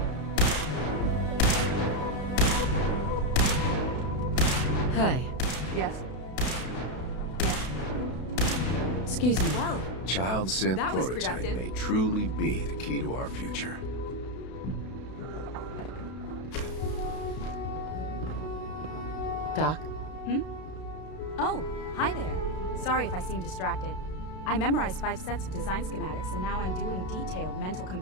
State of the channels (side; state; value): right; late; 32 ms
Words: Hi. Yes. Excuse me. Well, Child synth that was prototype productive. may truly be the key to our future. Doc? Oh, hi there. Sorry if I seem distracted. I memorized 5 sets of design schematics and now I'm doing detailed mental